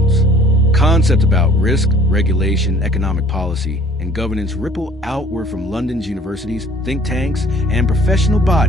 Concepts about risk, regulation, economic policy, and governance ripple outward from London's universities, think tanks, and professional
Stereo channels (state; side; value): normal; both; correlation 0.53